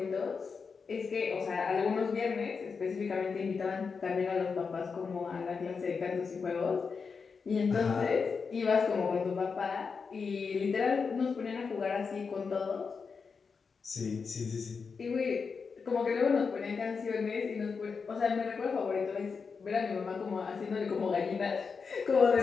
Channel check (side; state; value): right; quieter; 5.3 dB